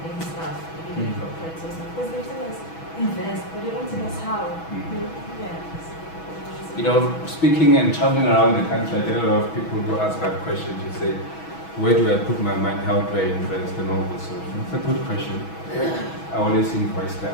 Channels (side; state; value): right; late; 6.2 ms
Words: stuff, maybe like corporates or something. Because they tell us invest, but they don't tell us how. Yeah. You know, speaking and traveling around the country, I get a lot of people who ask that question. You say, where do I put my money? How do I invest? And all this. So it's a good question. I always invest